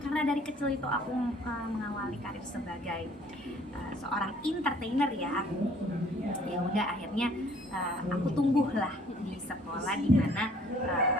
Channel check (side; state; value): both; normal; correlation 0.57